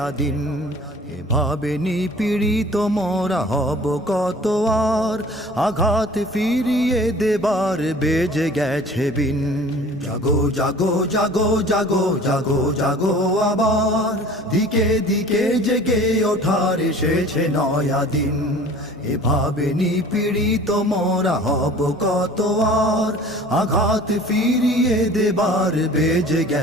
দিন। এভাবে নিপীড়িত মোরা হব কত আর, আঘাত ফিরিয়ে দেবার বেজে গেছে বিন। জাগো জাগো জাগো জাগো জাগো জাগো আবার দিকে দিকে জেগে ওঠার এসেছে নয়া দিন। এভাবে নিপীড়িত মোরা হব কত আর, আঘাত ফিরিয়ে দেবার বেজে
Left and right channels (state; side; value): normal; both; correlation 0.46